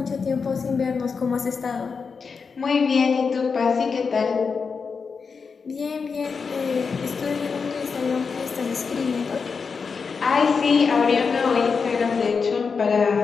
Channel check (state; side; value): quieter; right; 5.3 dB